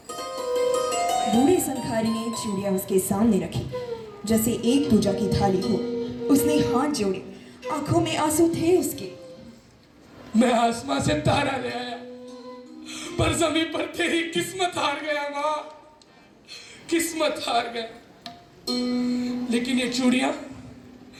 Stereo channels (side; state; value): both; identical; correlation 1.00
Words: बूढ़ी संखारी ने चूड़ियां उसके सामने रखी, जैसे एक पूजा की थाली हो। उसने हाथ जोड़े, आंखों में आंसू थे उसके। मैं आसमां से तारा ले आया, पर जमीन पर तेरी किस्मत हार गया माँ, किस्मत हार गया। लेकिन ये चूड़ियां